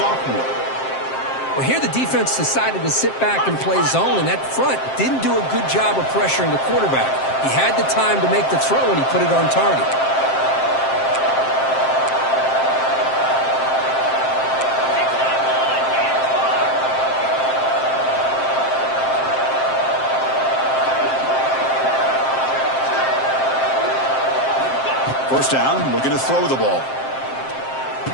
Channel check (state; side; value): late; right; 7.6 ms